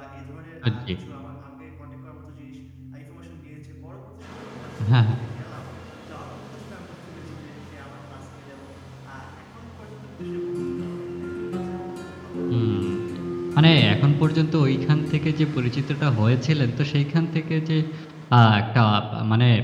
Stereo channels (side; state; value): both; identical; correlation 1.00